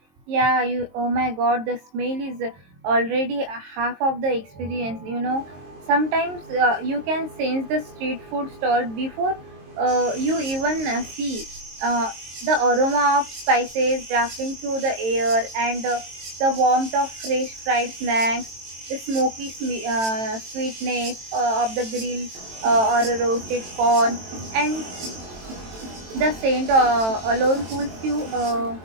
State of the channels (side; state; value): left; late; 22 ms